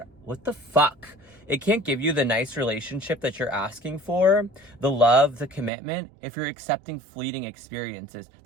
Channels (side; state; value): left; drops out; at 5.7 s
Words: what the fuck? It can't give you the nice relationship that you're asking for, the love, the commitment, if you're accepting fleeting experiences.